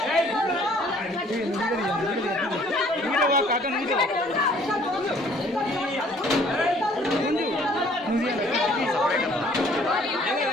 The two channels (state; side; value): normal; both; correlation 0.58